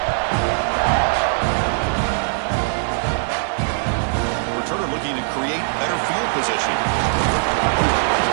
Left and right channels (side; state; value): left; silent; 63 dB below the other